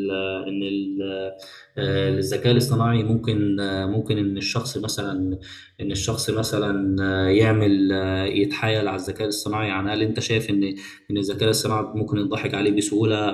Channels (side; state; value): both; identical; correlation 1.00